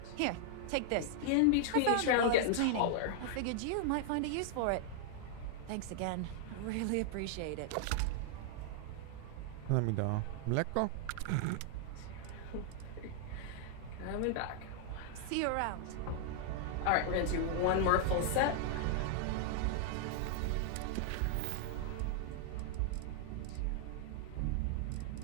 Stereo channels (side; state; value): both; different; correlation 0.00